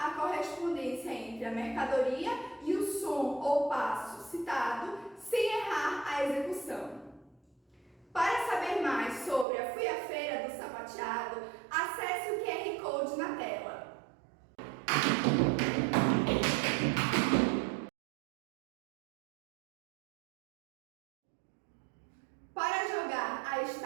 correspondência entre a mercadoria e o som ou passo citado sem errar a execução. Para saber mais sobre a Fui à Feira do Sapateado, acesse o QR Code na tela. Para jogar a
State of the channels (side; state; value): left; drops out; at 9.5 s